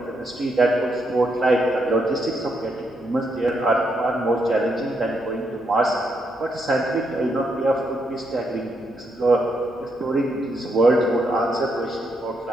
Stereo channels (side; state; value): both; normal; correlation 0.78